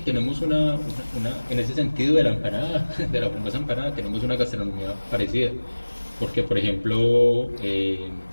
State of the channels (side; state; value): both; inverted; correlation -1.00